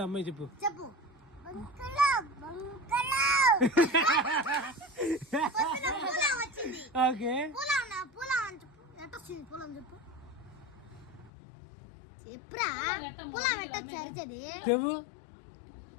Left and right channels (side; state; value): right; drops out; at 11.3 s